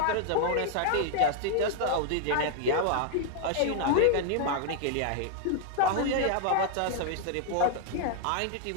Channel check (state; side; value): different; both; correlation -0.01